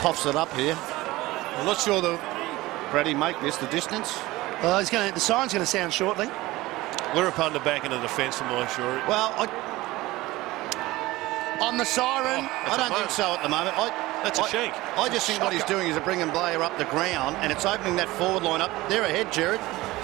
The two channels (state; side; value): quieter; left; 19.0 dB